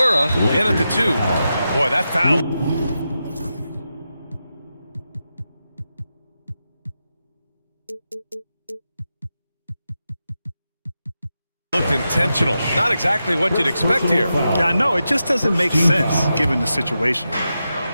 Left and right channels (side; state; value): both; inverted; correlation -0.89